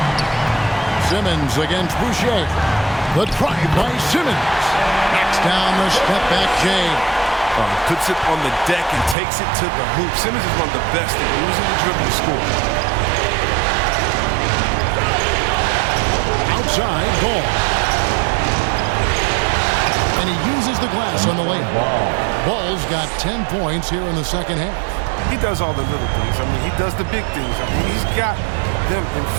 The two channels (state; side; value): drops out; left; at 9.2 s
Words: Simmons against Boucher. The drive by Simmons. Knocks down the step-back Jay. Puts it on the deck and takes it to the hoop. Simmons is one of the best at using the dribble to score. Outside, Ball. And he uses the glass on the layup. Ball's got 10 points here in the second half. He does all the little things. I mean, he does the big things. I mean, he's got them in